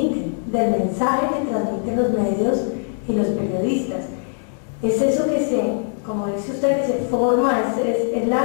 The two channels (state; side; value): silent; right; 65 dB below the other